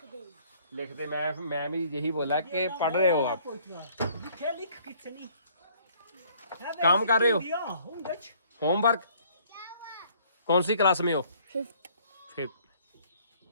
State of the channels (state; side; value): inverted; both; correlation -0.60